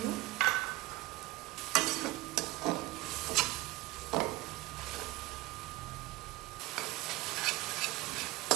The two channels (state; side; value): quieter; left; 19.0 dB